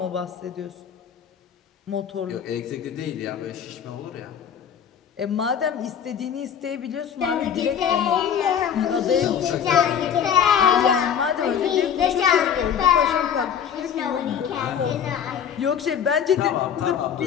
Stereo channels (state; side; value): quieter; right; 8.2 dB